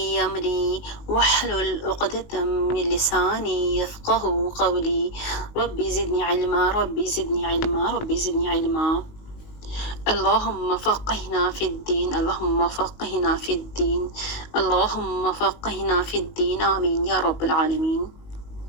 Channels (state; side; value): late; right; 19 ms